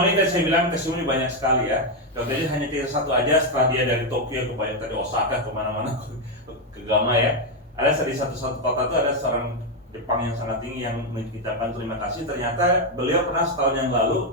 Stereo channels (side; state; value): both; normal; correlation 0.04